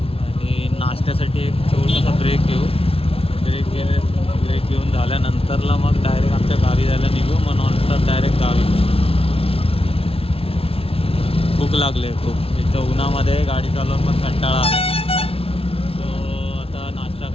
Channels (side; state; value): right; late; 0.27 ms